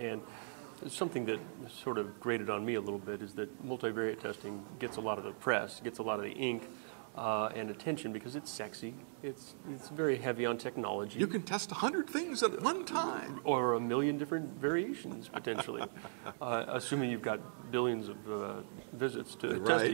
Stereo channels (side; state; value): left; silent; digital silence